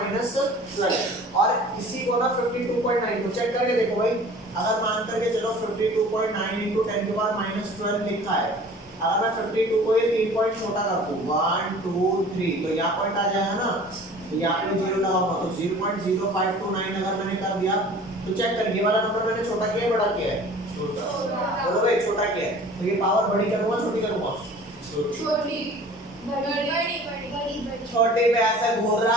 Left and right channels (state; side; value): normal; both; correlation 0.45